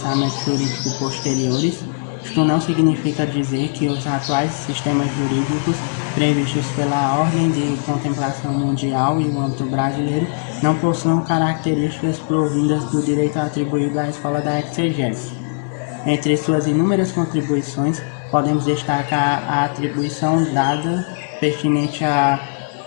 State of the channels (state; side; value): silent; right; digital silence